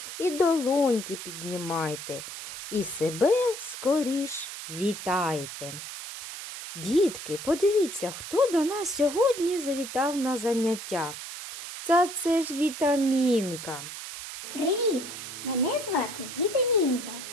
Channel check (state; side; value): noise; right; hiss, 9 dB below the sound